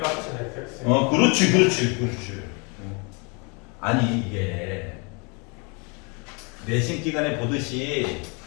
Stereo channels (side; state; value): right; quieter; 32.8 dB